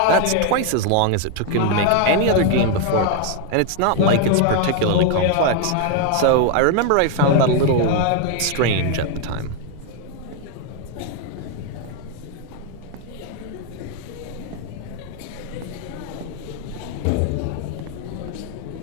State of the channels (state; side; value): different; both; correlation 0.01